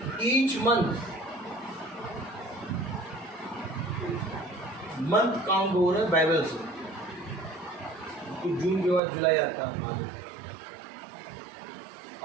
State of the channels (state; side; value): drops out; left; at 9.0 s